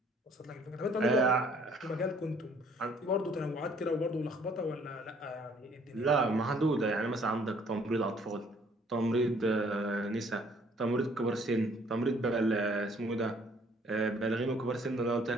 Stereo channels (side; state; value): both; normal; correlation 0.61